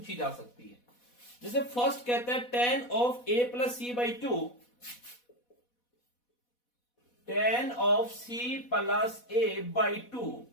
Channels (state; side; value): late; right; 4.1 ms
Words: जा सकती है। जैसे फर्स्ट कहता है tan of a plus C by 2, tan of c plus a by 2